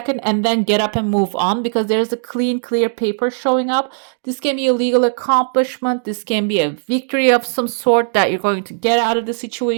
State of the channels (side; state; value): left; silent; digital silence